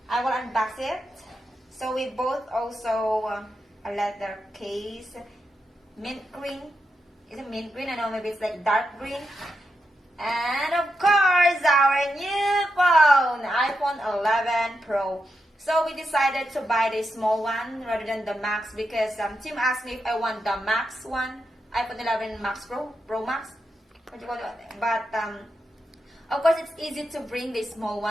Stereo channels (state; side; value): normal; both; correlation 0.86